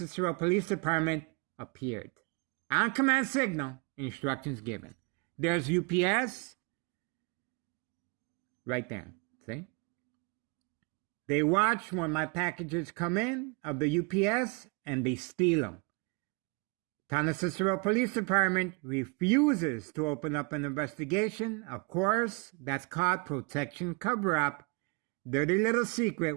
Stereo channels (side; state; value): left; quieter; 31.6 dB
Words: Police Department appeared. On command signal, instructions given. There's UPS right there. See? They watch when my packages come in of the UPS and they steal them. Town of Cicero Police Department refuses to open up an investigation. Of course, that's called protection cover-up. Dirty little